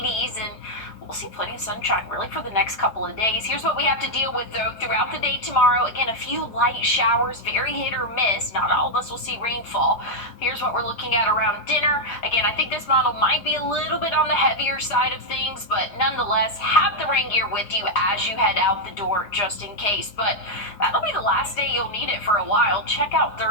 and we'll see plenty of sunshine really for the next couple of days. Here's what we have to deal with, though, throughout the day tomorrow. Again, a few light showers, very hit or miss. Not all of us will see rainfall. Here's what we're looking at around dinner. Again, I think this model might be a little bit on the heavier side of things, but nonetheless, have the rain gear with you as you head out the door just in case. But that'll be the last day you'll need it for a while. Check out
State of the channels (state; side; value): late; right; 5.0 ms